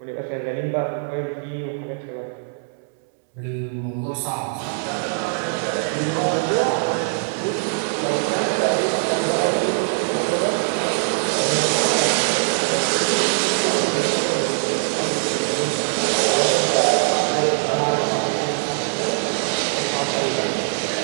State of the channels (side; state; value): left; silent; 64 dB below the other